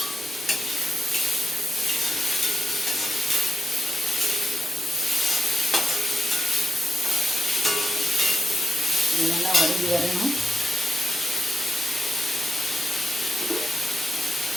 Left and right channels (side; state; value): both; normal; correlation 0.87